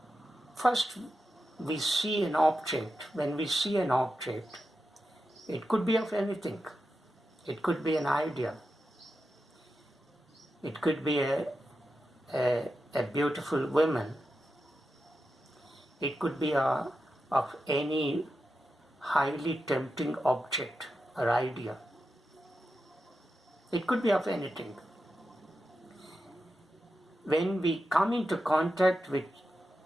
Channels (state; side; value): normal; both; correlation 0.89